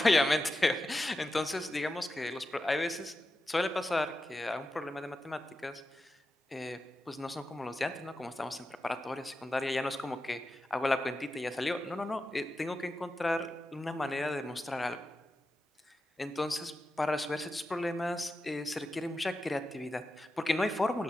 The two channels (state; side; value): normal; both; correlation 0.90